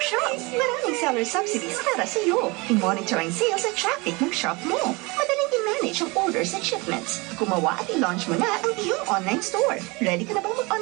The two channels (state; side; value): quieter; left; 25.8 dB